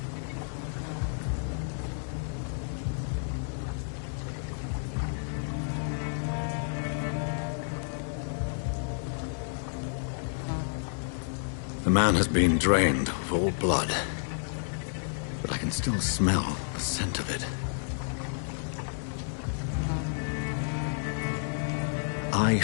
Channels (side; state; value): right; silent; digital silence